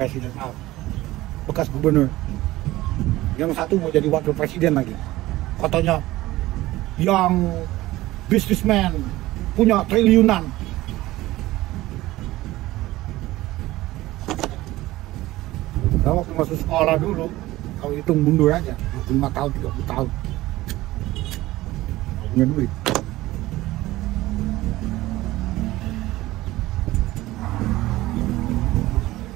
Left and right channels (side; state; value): left; quieter; 17.4 dB